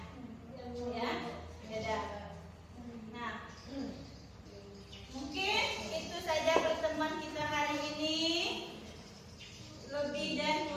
ya. Beda. Nah. Mungkin itu saja pertemuan kita hari ini. Lebih dan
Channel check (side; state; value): both; identical; correlation 1.00